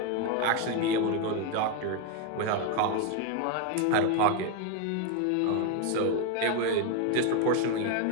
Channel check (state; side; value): different; both; correlation 0.01